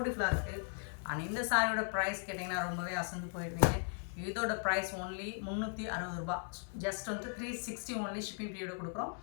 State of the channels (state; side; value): silent; right; 53 dB below the other